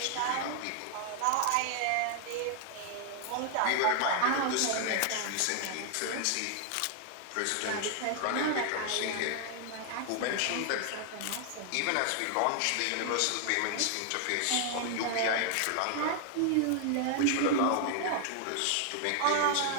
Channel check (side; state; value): both; different; correlation 0.00